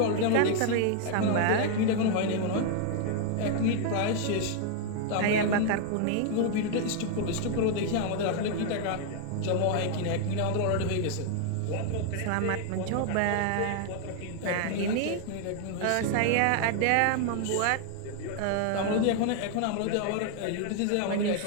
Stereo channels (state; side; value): different; both; correlation 0.00